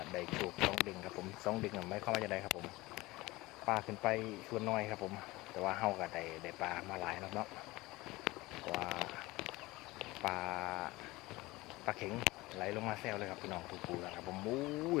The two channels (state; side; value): quieter; right; 20.5 dB